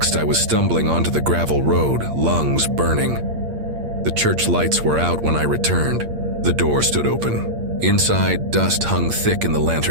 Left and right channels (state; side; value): late; left; 8.6 ms